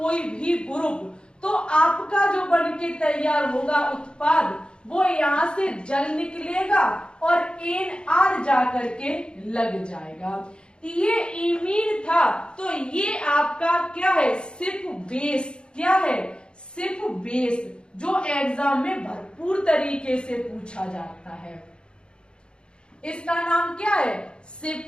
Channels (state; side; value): late; right; 0.053 ms